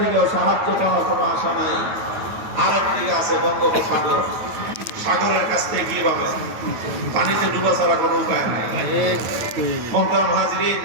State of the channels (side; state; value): left; late; 9.3 ms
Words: থেকেও সাহায্য পাওয়ার কোনো আশা নাই। আরেকদিকে আছে বঙ্গোপসাগর, সাগরের কাছ থেকে কি পাবে? পানিতে ডুবা ছাড়া কোনো উপায় নাই। মোহতারাম হাজরিন,